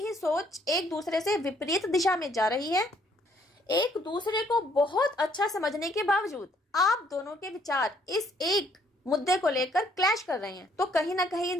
सोच एक दूसरे से विपरीत दिशा में जा रही है। एक दूसरे को बहुत अच्छा समझने के बावजूद आप दोनों के विचार इस एक मुद्दे को लेकर क्लैश कर रहे हैं। तो कहीं ना कहीं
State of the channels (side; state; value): both; normal; correlation 0.66